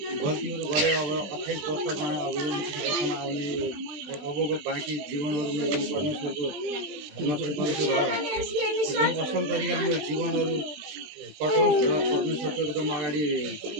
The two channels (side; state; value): left; late; 20 ms